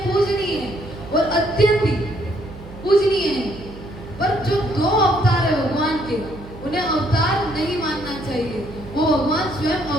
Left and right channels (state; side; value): noise; right; hum, 15 dB below the sound